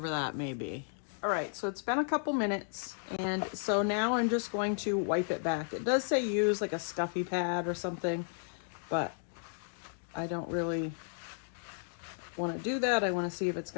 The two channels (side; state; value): right; silent; digital silence